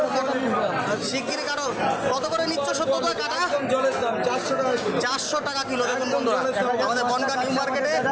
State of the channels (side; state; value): both; identical; correlation 1.00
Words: কাটো। শিগগিরি কাটো। কত করে নিচ্ছ সত্যতা কাটা? একদম জলের দাম 400 টাকা কিলো। 400 টাকা কিলো। দেখুন বন্ধুরা, আমাদের বনগা নিউ মার্কেটে